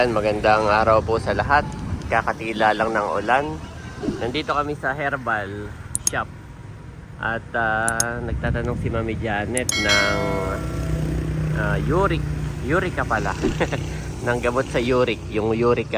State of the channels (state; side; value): identical; both; correlation 1.00